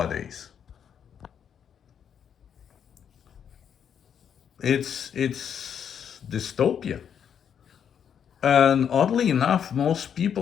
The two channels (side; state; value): right; quieter; 8.2 dB